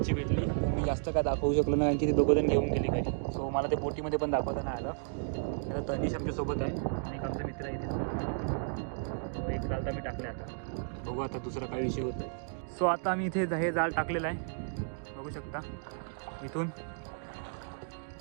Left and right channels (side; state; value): left; silent; digital silence